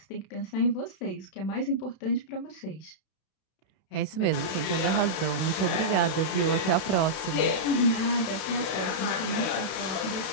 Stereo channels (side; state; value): right; late; 32 ms